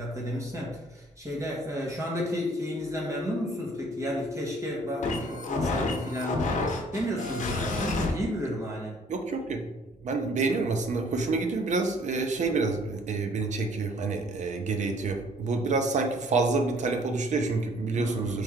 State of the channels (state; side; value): normal; both; correlation 0.58